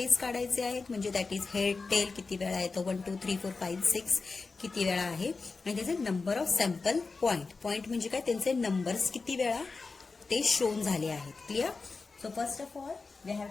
काढायचे आहेत, म्हणजे दॅट इज हेड, टेल किती वेळा येतो, 1 2 3 4 5 6 किती वेळा आहे, आणि त्याचे नंबर ऑफ सॅम्पल पॉइंट म्हणजे काय? त्यांचे नंबर्स किती वेळा ते शोन झाले आहेत. Clear. So first of all we have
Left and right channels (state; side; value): quieter; right; 4.2 dB